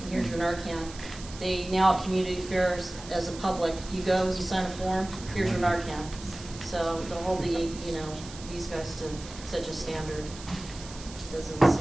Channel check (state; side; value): noise; right; hiss, 15 dB below the sound